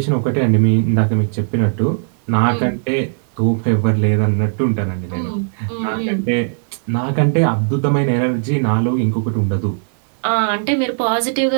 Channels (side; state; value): left; silent; 68 dB below the other